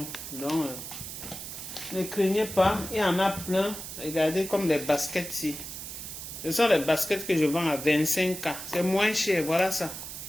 Donc, ne craignez pas. Il y en a plein. Regardez comme les baskets ici. Ce sont les baskets que je vends à 25K. C'est moins cher. Voilà ça.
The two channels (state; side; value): noise; right; hiss, 9 dB below the sound